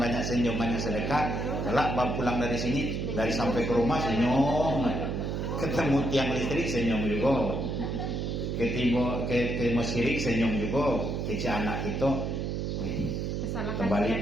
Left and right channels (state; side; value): noise; right; hum, 2 dB below the sound